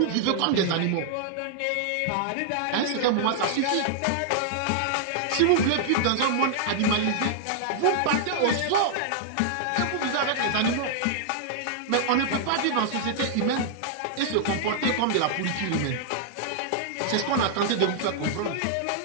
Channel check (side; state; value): both; different; correlation -0.01